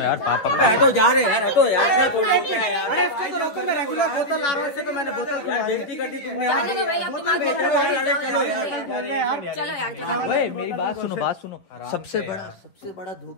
पापा हटो जा रहे यार, हटो यार। अरे इसको तो रोको, मैं रेगुलर बोतल ला रहा हूँ, इससे तो मैंने बोतल बेइज्जती कर दी तुमने। जाने दो भाई, अब तुम आगे चलो यार चलो यार चलो। ओए मेरी बात सुनो, बात सुनो। सबसे बड़ा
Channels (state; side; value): late; right; 11 ms